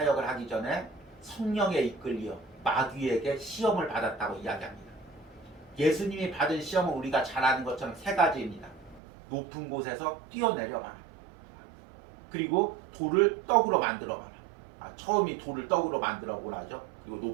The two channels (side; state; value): left; drops out; at 9.0 s